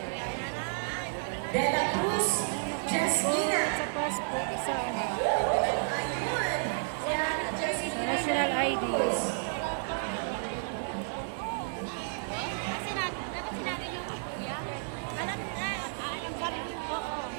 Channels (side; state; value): left; silent; digital silence